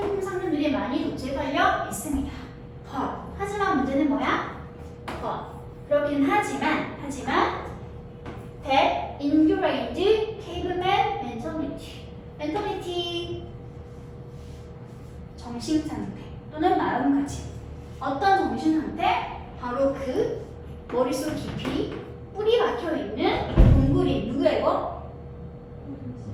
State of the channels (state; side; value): identical; both; correlation 1.00